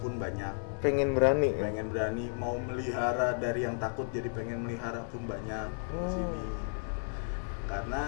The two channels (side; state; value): right; silent; digital silence